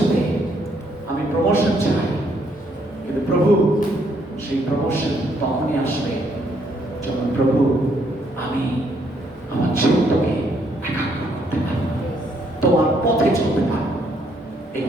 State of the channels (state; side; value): normal; both; correlation 0.70